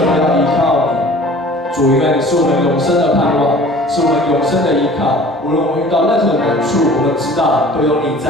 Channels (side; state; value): both; normal; correlation 0.47